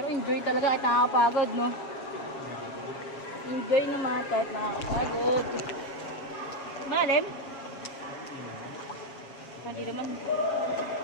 enjoy talaga kahit nakakapagod, no? Enjoy naman kahit nakakapagod. Malalim? Hindi naman.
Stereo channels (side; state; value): right; late; 7.3 ms